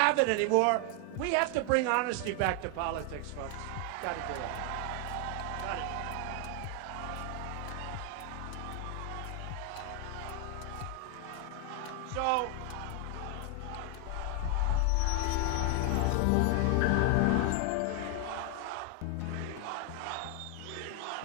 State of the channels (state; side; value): different; both; correlation 0.00